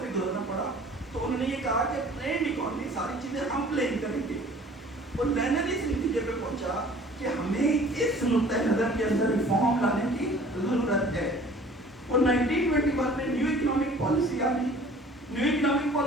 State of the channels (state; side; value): normal; both; correlation 0.50